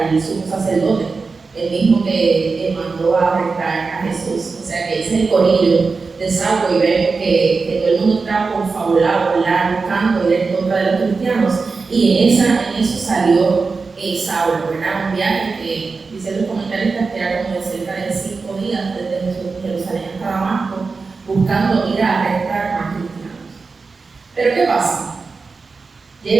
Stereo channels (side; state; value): left; quieter; 4.4 dB